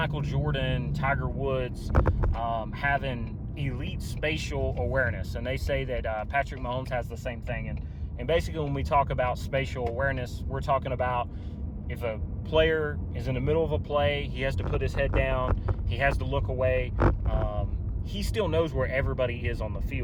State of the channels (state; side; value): identical; both; correlation 1.00